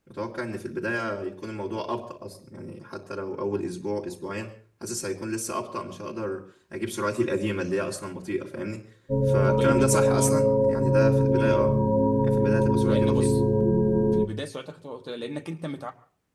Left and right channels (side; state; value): both; identical; correlation 1.00